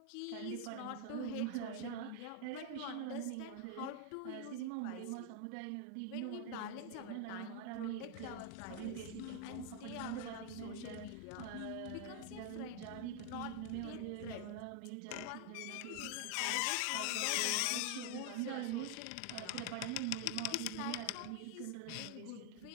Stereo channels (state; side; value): different; both; correlation 0.00